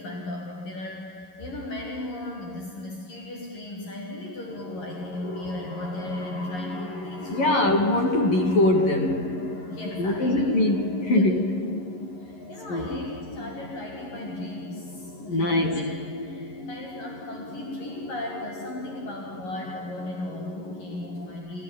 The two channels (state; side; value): late; right; 11 ms